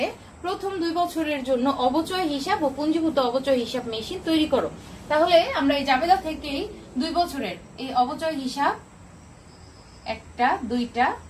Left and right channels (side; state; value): both; identical; correlation 1.00